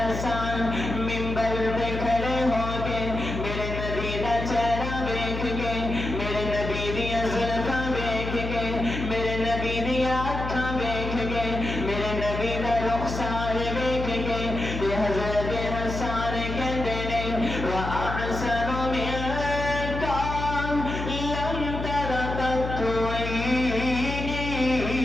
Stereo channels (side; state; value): left; noise; hum, 5 dB below the sound